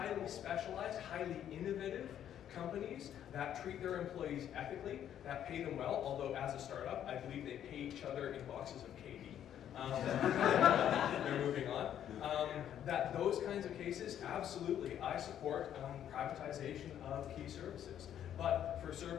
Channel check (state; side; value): quieter; right; 10.3 dB